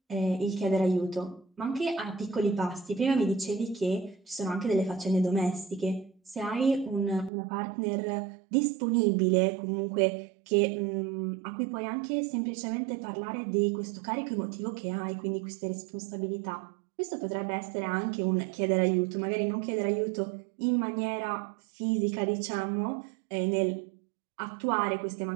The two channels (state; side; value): drops out; left; at 7.3 s